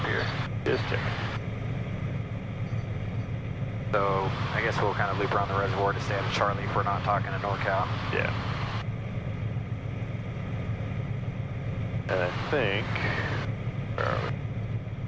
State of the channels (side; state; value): both; identical; correlation 1.00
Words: Just checking. So I guess we'll kind of loop around the reservoir to stay out of Charlie if we're not talking to NorCal. Yeah. And I think, where are we?